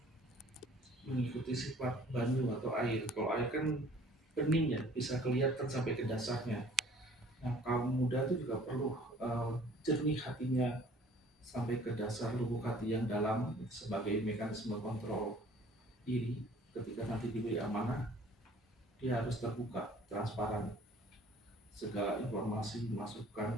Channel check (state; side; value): normal; both; correlation 0.53